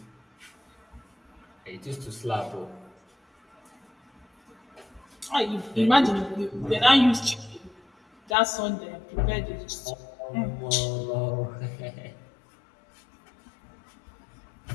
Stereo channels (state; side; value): drops out; right; at 8.3 s